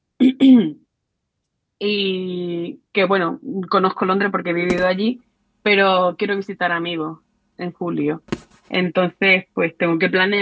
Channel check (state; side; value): identical; both; correlation 1.00